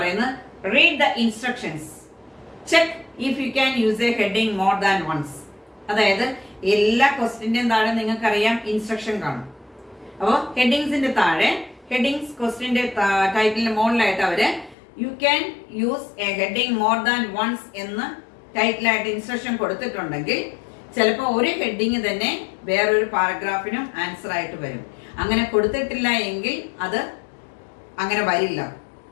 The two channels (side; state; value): right; drops out; at 14.8 s